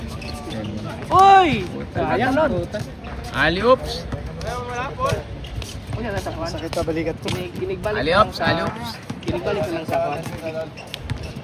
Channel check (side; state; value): both; identical; correlation 1.00